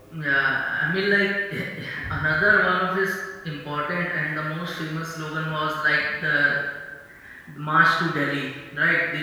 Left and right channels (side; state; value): both; identical; correlation 1.00